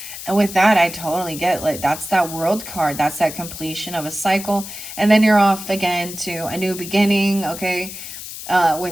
And with that, I totally get, like, that's that world card. That's that completion of a cycle. And then you're off again to a new beginning, okay?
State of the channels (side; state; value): left; noise; hiss, 11 dB below the sound